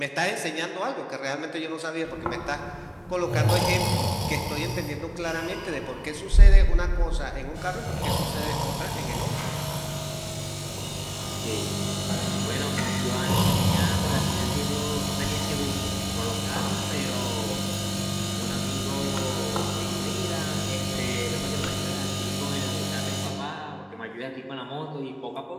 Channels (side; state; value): both; identical; correlation 1.00